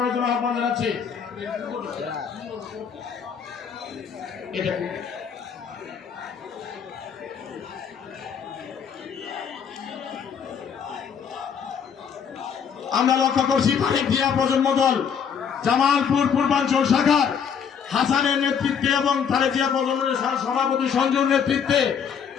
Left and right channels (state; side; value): quieter; right; 7.2 dB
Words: জন্য আহ্বান জানাচ্ছি। আমরা লক্ষ্য করছি তারেক জিয়া প্রজন্ম দল জামালপুর পূর্বাঞ্চল শাখার হাসানের নেতৃত্বে এবং তারেক জিয়া প্রজন্মের সভাপতি সঞ্জুর নেতৃত্বে